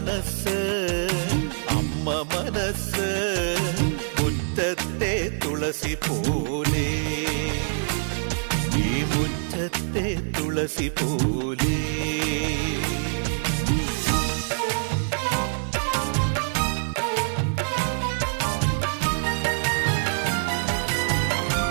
അമ്മ മനസ്സ് മുറ്റത്തെ തുളസി പോലെ ഈ മുറ്റത്തെ തുളസി പോലെ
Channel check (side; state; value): left; silent; 62 dB below the other